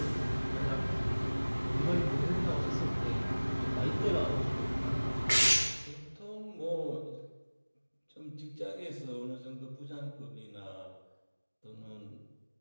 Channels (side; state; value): both; inverted; correlation -1.00